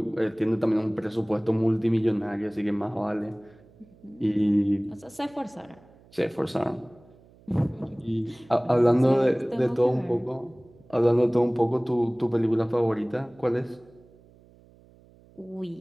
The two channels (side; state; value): right; noise; hum, 27 dB below the sound